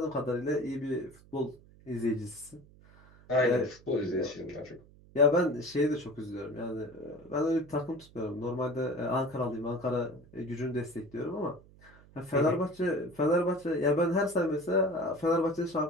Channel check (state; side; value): noise; right; hum, 24 dB below the sound